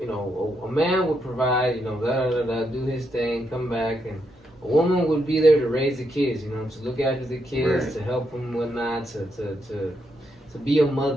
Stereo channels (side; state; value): both; normal; correlation 0.80